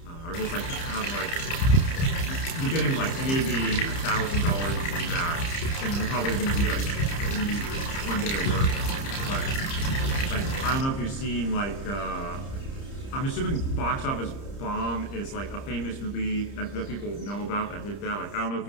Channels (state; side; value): late; right; 30 ms